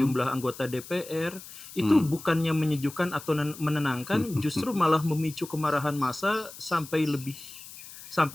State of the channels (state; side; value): noise; left; hiss, 15 dB below the sound